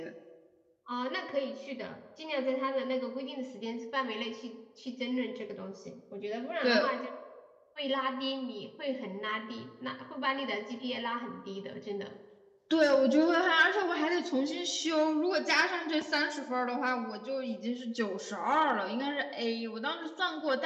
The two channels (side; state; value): both; identical; correlation 1.00